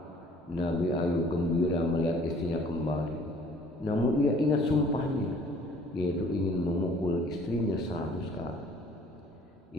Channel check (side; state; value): both; normal; correlation 0.55